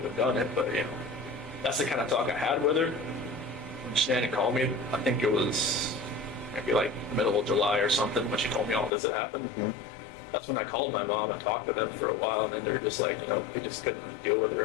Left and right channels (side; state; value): right; drops out; at 8.9 s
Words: have done it. But you know. That's the kind of talk I had with her. When Shanann called me, I think it was maybe like the middle of July or something when she told me all this had happened. That's when I called my mom and talked to them for a while, and then they're just like, you know, they just couldn't deal with